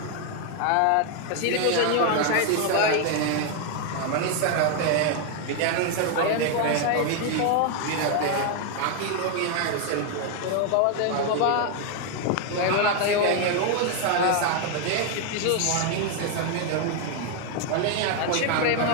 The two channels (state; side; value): different; both; correlation 0.00